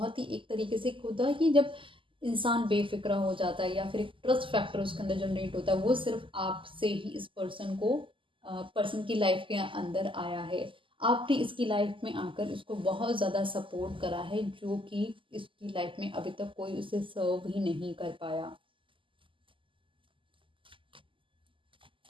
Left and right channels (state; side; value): late; left; 0.25 ms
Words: ही एक तरीके से होता है कि जब इंसान बेफ़िक्रा हो जाता है या फिर एक ट्रस्ट फैक्टर उसके अंदर जनरेट होता है, वो सिर्फ़ आपसे ही इस पर्सन को पर्सन की लाइफ़ के अंदर आया है। आपने इसकी लाइफ़ में आकर इसको बहुत ज़्यादा सपोर्ट करा है, जो कि इसकी लाइफ़ में अभी तक कोई उसे सर्व ही नहीं कर पाया।